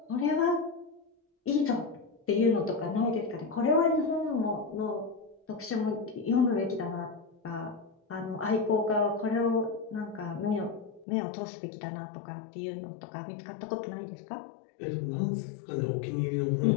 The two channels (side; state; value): right; drops out; at 11.1 s